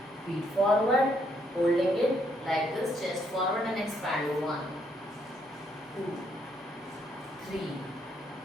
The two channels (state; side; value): normal; both; correlation 0.72